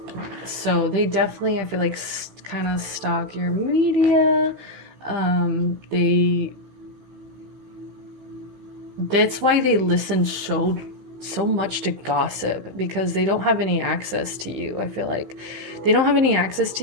So they definitely, I feel like, kind of stalk your media. That's why they listen so much to gossip, because they don't have any access to you. I feel like they don't have any access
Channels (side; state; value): left; late; 16 ms